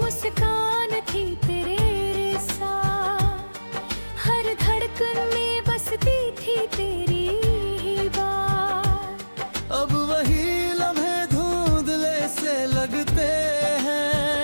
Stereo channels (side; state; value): both; inverted; correlation -1.00